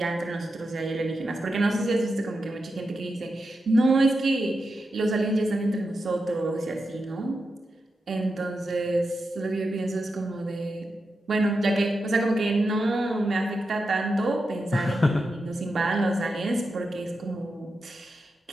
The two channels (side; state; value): both; normal; correlation 0.88